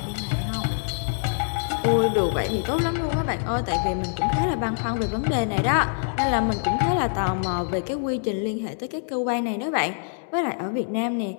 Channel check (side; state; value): right; silent; digital silence